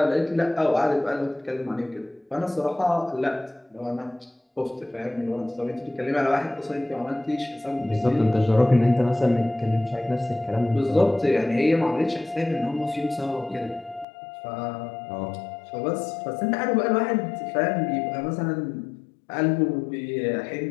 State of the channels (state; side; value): drops out; right; at 14.1 s